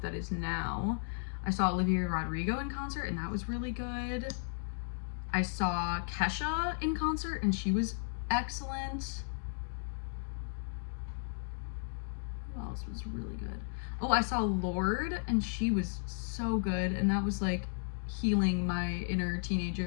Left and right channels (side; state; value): right; silent; digital silence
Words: that is now. I saw Olivia Rodrigo in concert, and that was really good. I saw Kesha in concert, and she was excellent. Who else was really good? Oh, I saw Lorde, and she was so good, and that was like healing my inner